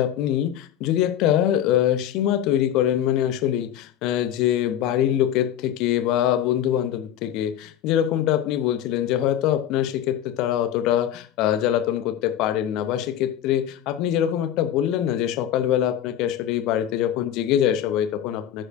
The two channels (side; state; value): right; quieter; 10.9 dB